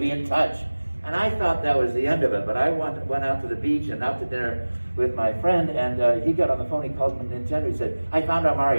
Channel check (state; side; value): inverted; both; correlation -1.00